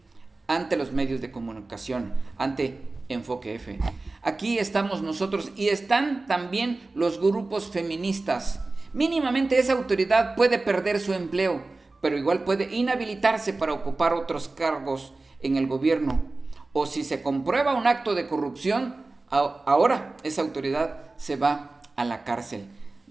ante los medios de comunicación, ante Enfoque F. Aquí estamos nosotros y están también los grupos feministas. Mínimamente esa autoridad puede perder su empleo, pero igual puede inhabilitarse para ocupar otros cargos en el gobierno. O si se comprueba un acto de corrupción, ahora esa autoridad se va a la cárcel.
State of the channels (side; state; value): left; quieter; 3.3 dB